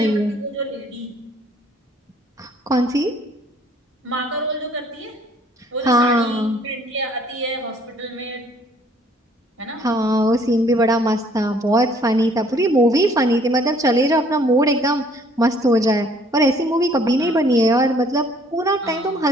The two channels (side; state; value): both; normal; correlation 0.60